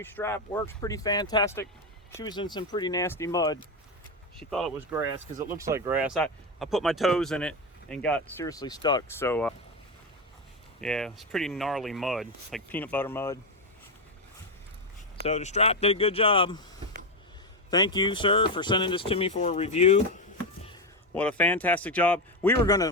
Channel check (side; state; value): both; normal; correlation 0.11